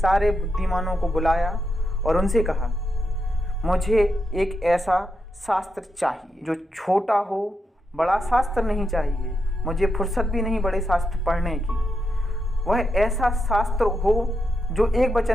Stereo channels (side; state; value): both; normal; correlation 0.84